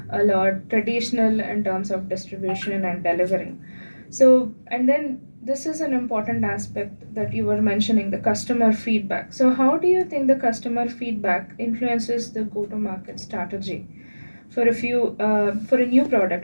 a lot traditional in terms of distribution and delivering. So, and then this is an important aspect that you were mentioning, the customer feedback. So, how do you think the customer feedback influences the go to market strategy for for a new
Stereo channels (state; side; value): inverted; both; correlation -1.00